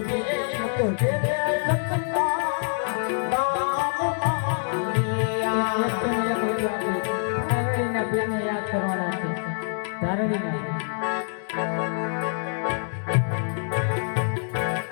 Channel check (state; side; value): silent; right; digital silence